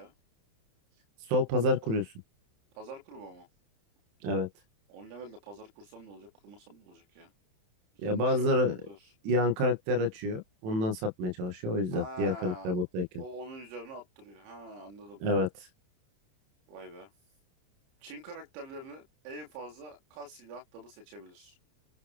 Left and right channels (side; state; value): left; late; 28 ms